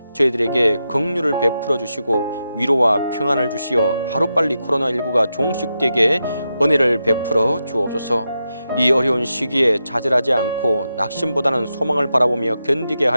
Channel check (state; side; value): inverted; both; correlation -0.88